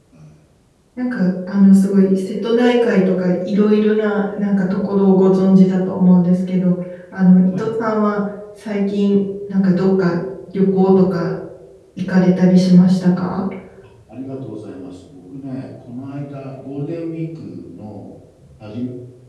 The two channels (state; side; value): identical; both; correlation 1.00